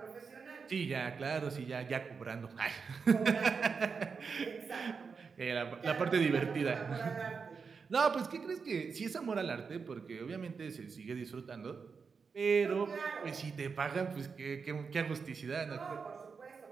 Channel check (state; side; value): quieter; left; 5.4 dB